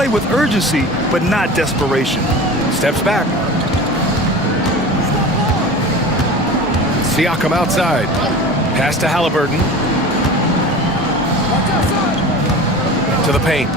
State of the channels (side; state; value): both; normal; correlation 0.35